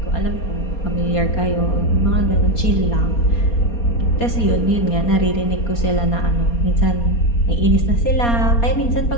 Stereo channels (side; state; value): right; late; 4.3 ms